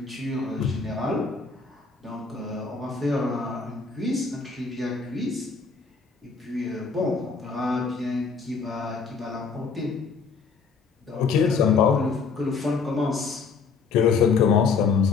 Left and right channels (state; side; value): quieter; right; 5.1 dB